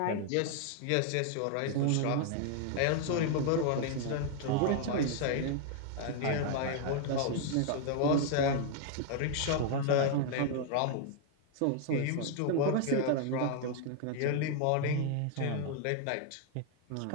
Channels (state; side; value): different; both; correlation 0.00